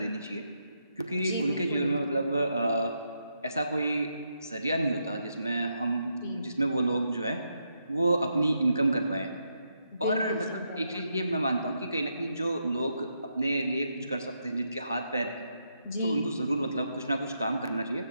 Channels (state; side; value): inverted; both; correlation -0.81